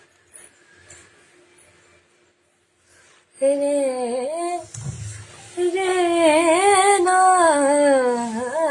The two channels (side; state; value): both; identical; correlation 1.00